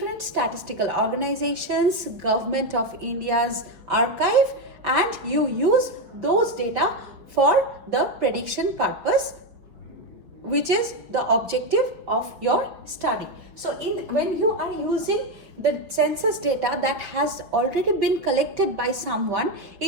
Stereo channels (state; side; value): late; left; 5.3 ms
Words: statistical organizations, Government of India's archive, and you use those data for the prediction purpose, which is the objective of your study. So when you are using the census data that has already been collected by someone